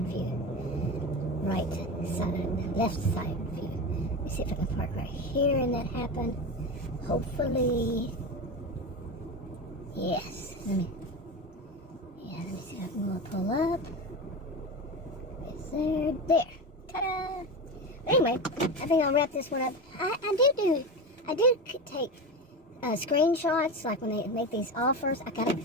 view, right side, left side view. Let me see if I can park right here and that happen. Hopefully, yes. Let me see if I can pull up. It's there. Ta-da! Anyway, I think I'll wrap this one up. I do take screenshots, like when they make these offers. I gotta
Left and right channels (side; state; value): both; normal; correlation 0.22